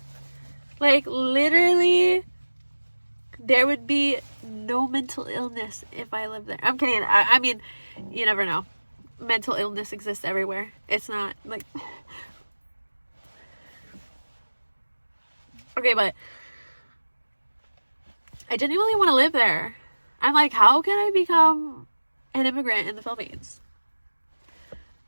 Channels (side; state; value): both; inverted; correlation -1.00